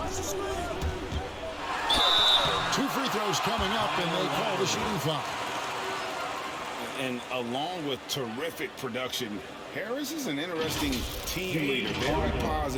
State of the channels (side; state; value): both; identical; correlation 1.00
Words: Two free throws coming up, and they call the shooting foul. And along with terrific production, Harris is an interesting team leader, very